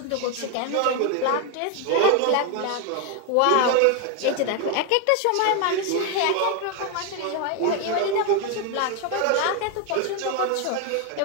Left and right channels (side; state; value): both; different; correlation 0.01